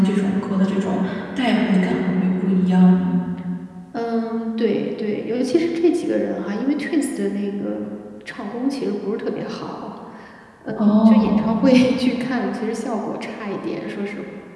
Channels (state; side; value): identical; both; correlation 1.00